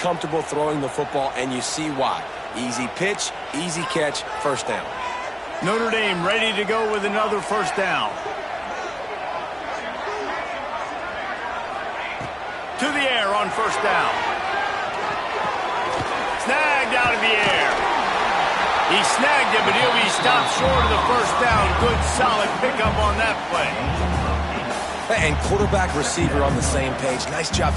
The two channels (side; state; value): both; identical; correlation 1.00